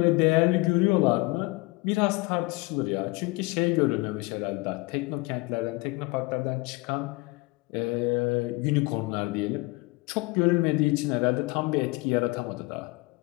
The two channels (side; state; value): right; quieter; 24.3 dB